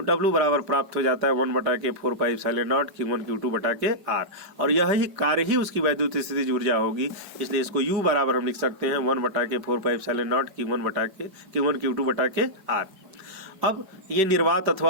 W बराबर प्राप्त हो जाता है 1/4πε0 Q1 Q2 R, और यही कार्य ही उसकी वैद्युत स्थितिज ऊर्जा होगी, इसलिए इसको U बराबर हम लिख सकते हैं 1/4πε0 Q1 Q2 R। अब ये निर्वात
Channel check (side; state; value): left; late; 5.2 ms